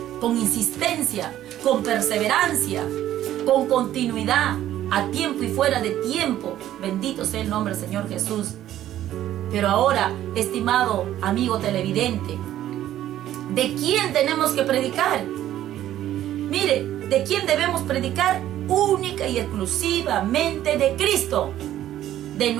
con insistencia, con perseverancia, con continuidad, a tiempo y fuera de tiempo. Bendito sea el nombre del Señor Jesús. Pero ahora, estimado amigo televidente, ¿de quién tenemos que predicar? Mire, ¿de quién debemos predicar? Única y exclusivamente de Cristo, de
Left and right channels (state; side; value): quieter; left; 12.6 dB